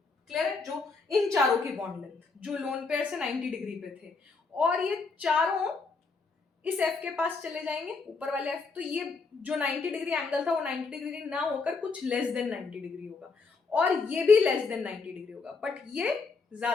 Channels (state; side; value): quieter; right; 4.4 dB